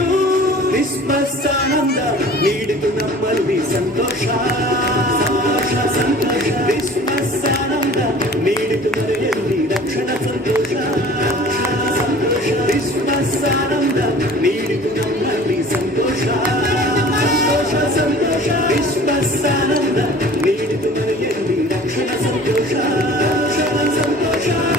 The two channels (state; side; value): normal; both; correlation 0.45